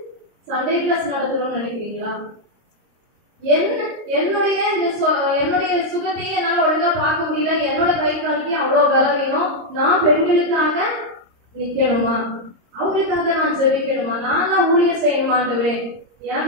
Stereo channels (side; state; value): left; late; 26 ms